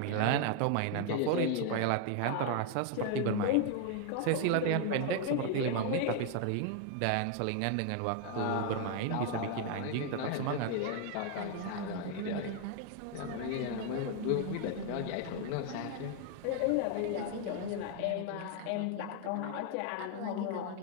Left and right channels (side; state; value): both; different; correlation 0.00